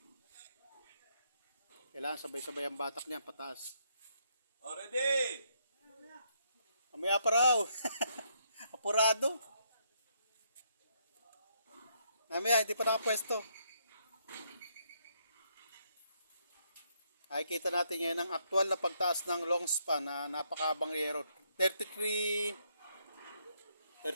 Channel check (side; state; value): both; inverted; correlation -0.74